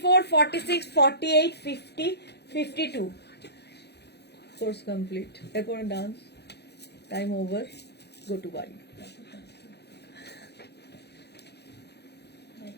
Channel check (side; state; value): right; late; 0.48 ms